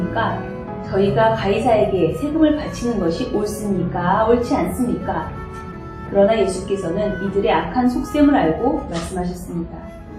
저희가 가이사에게 세금을 바치는 것이 옳습니까? 옳지 않습니까? 그러나 예수께서는 이들의 악한 속셈을 알고 말씀하셨습니다.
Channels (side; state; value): both; identical; correlation 1.00